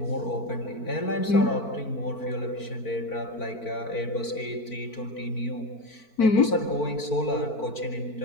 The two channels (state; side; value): late; right; 4.5 ms